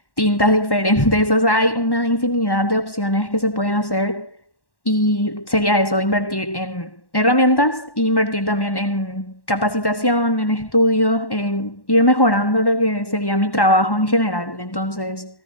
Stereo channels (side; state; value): right; late; 1.1 ms